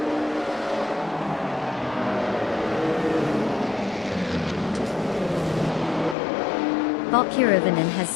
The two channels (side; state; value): right; drops out; at 6.2 s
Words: Bot Kirovanen has